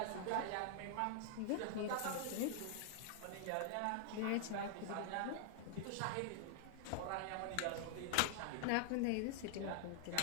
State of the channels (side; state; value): both; different; correlation 0.00